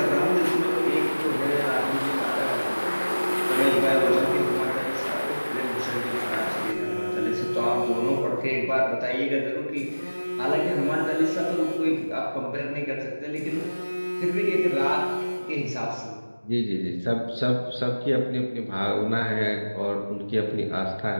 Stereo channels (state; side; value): inverted; both; correlation -1.00